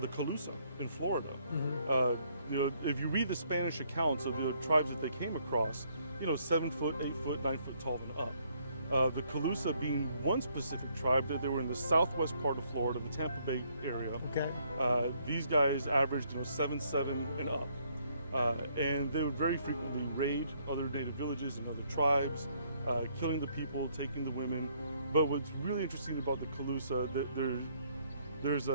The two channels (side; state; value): both; inverted; correlation -0.68